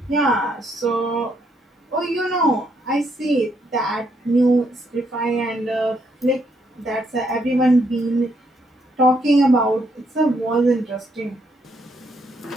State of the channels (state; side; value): normal; both; correlation 0.74